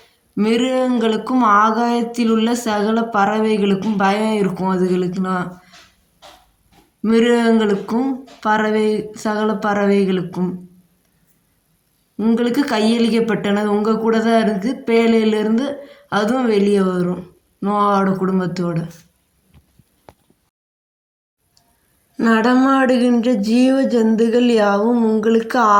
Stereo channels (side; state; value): both; identical; correlation 1.00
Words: மிருகங்களுக்கும் ஆகாயத்தில் உள்ள சகல பறவைகளுக்கும் பயம் இருக்கும். அதுகளுக்குனா மிருகங்களுக்கும் சகல பறவைகளுக்கும் உங்களுக்கு கையளிக்கப்பட்டனது. உங்கள் கூட தான் இருக்குது. பேழையிலேருந்து அதுவும் வெளியே வரும் நோவாவோட குடும்பத்தோடு. நடமாடுகின்ற ஜீவ ஜந்துகள் யாவும் உங்களுக்கு